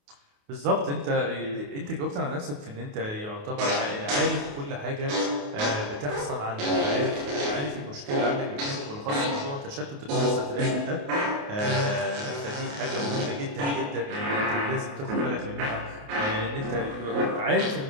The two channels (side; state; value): left; late; 28 ms